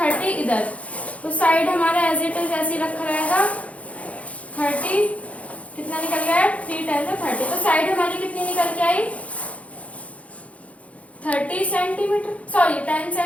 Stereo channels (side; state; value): right; late; 0.065 ms